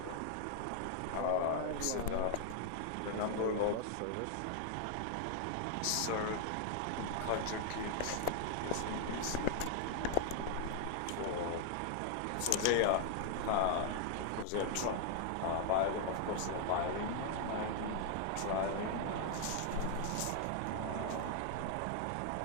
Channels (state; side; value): different; both; correlation 0.00